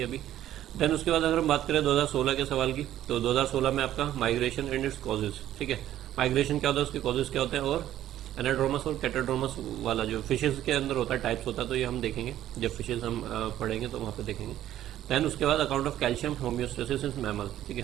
अभी। देन उसके बाद अगर हम बात करें 2016 के सवाल की, तो 2016 में आपका माइग्रेशन एंड इट्स कॉजेज, ठीक है। माइग्रेशन क्या होता है, उसके कॉजेज क्या होते हैं, और एनाड्रोमस और कैटाड्रोमस वाला जो फिशेज के अंदर होता है, टाइप्स होता है, तो ये हम देखेंगे जब फिशेज हम पढ़ेंगे तो वहाँ पे देखेंगे। देन उसके बाद account of calcium homeostasis in mammal, ठीक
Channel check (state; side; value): quieter; left; 12.5 dB